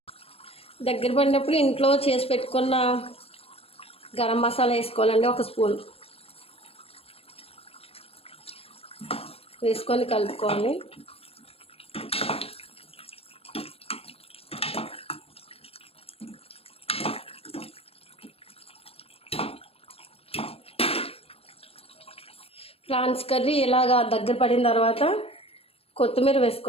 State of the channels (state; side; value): late; right; 0.28 ms